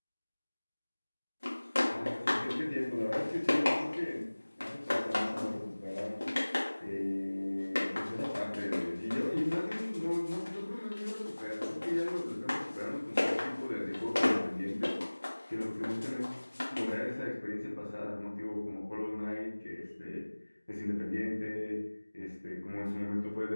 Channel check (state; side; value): inverted; both; correlation -1.00